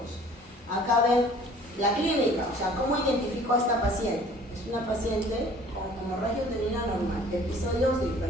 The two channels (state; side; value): normal; both; correlation 0.51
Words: Acá ven la clínica, o sea, ¿cómo identifico a esta paciente? Es una paciente con hemorragia uterina normal, episodios de